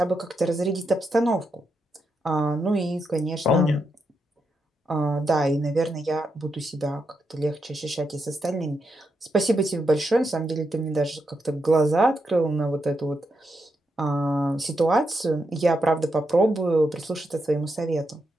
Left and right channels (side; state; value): both; normal; correlation 0.83